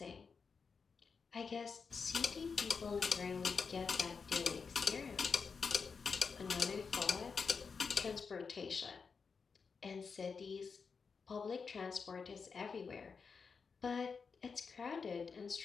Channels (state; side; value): quieter; right; 5.4 dB